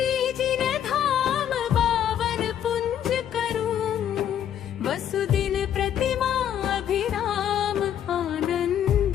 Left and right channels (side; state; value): right; quieter; 9.9 dB